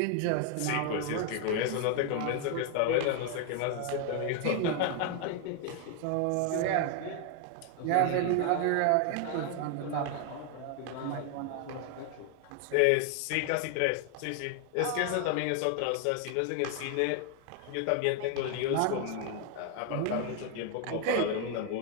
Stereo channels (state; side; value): different; both; correlation 0.00